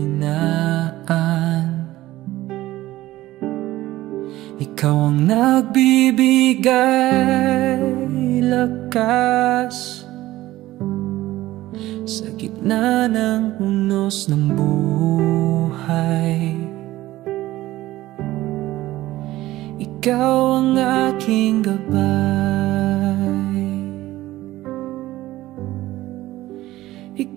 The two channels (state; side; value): quieter; left; 16.2 dB